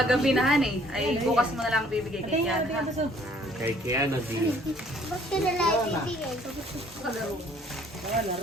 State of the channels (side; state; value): both; normal; correlation 0.59